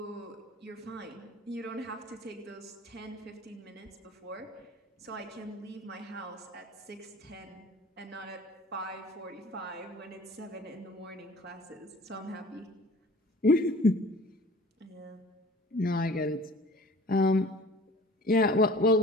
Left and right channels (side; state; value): both; normal; correlation 0.46